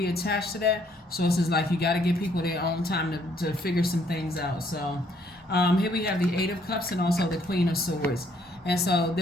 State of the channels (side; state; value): both; normal; correlation 0.67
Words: attached to that? So it's just like, you got to give people their own time to figure some things out. So here we have the Eight of Cups and also the Queen of Swords. And so